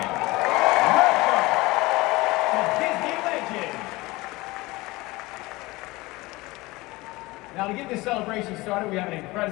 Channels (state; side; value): quieter; right; 21.2 dB